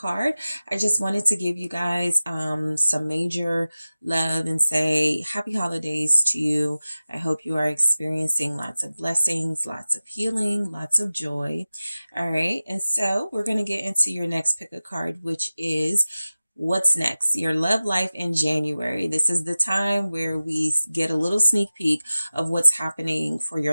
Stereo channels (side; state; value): both; inverted; correlation -0.96